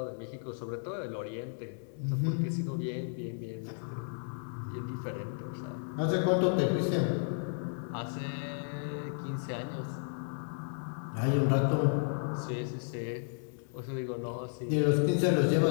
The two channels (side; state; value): right; silent; digital silence